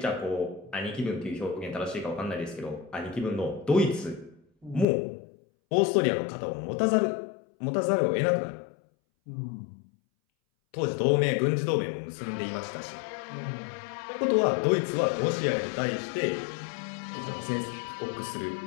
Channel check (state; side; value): drops out; right; at 4.9 s